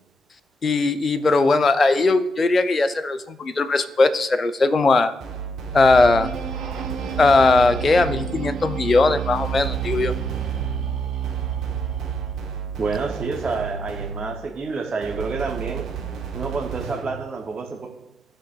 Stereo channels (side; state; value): both; normal; correlation 0.82